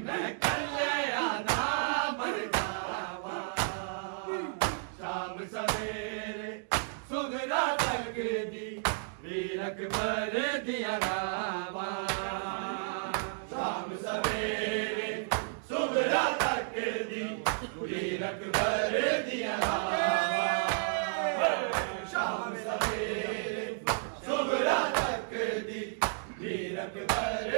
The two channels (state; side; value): silent; left; digital silence